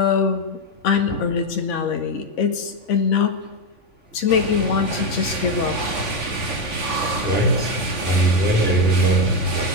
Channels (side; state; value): right; late; 3.5 ms